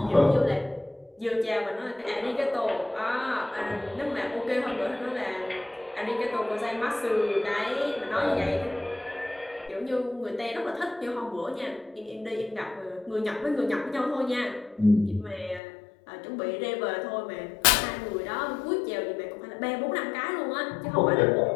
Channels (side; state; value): right; drops out; at 15.6 s